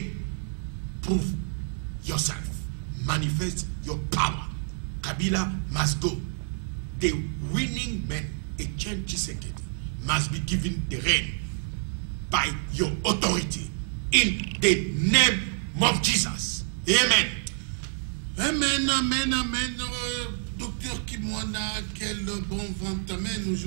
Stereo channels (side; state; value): left; silent; digital silence